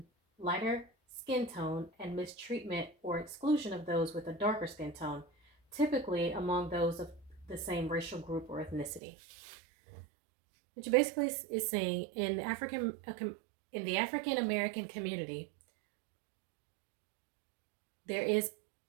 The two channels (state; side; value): drops out; left; at 9.0 s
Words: lighter skin tone and mistreatment or exclusion of those with a darker skin tone, typically among those of the same racial group or ethnicity. Which basically is saying in the African American community, there is